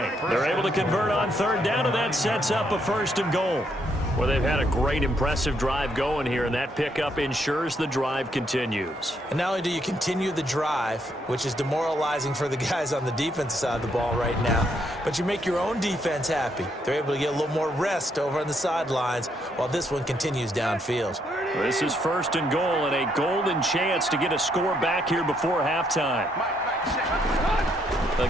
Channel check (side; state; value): both; normal; correlation 0.74